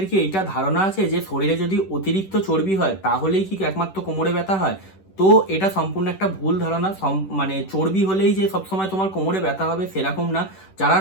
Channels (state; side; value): late; right; 10 ms